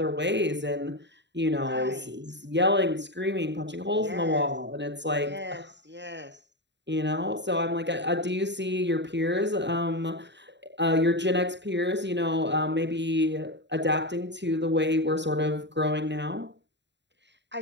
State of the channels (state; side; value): late; left; 0.52 ms